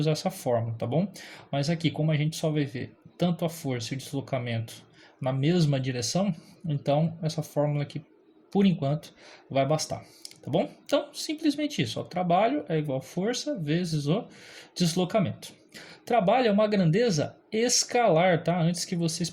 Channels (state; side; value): identical; both; correlation 1.00